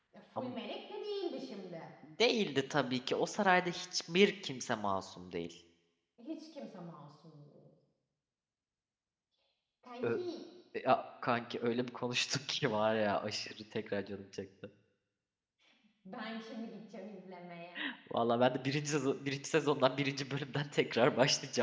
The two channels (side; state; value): both; identical; correlation 1.00